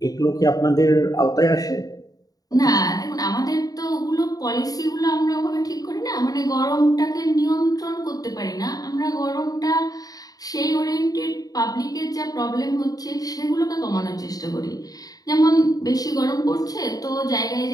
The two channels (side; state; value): right; late; 0.18 ms